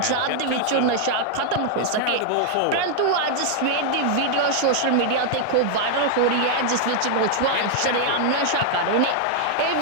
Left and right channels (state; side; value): different; both; correlation 0.00